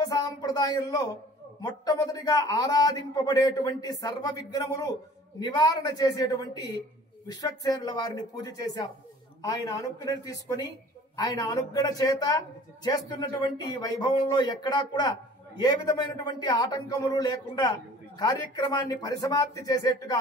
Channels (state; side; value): normal; both; correlation 0.48